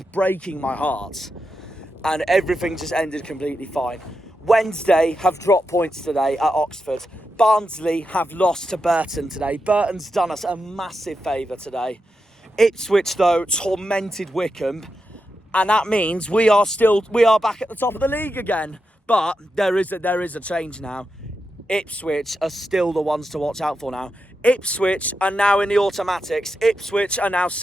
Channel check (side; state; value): both; normal; correlation 0.87